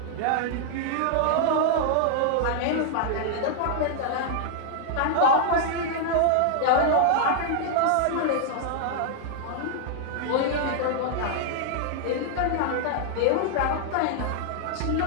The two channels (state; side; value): different; both; correlation -0.01